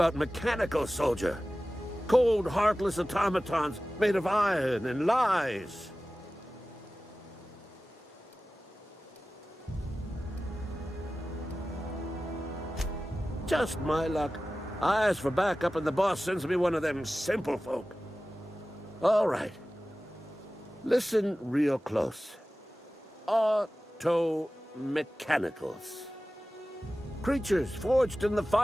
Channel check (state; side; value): normal; both; correlation 0.96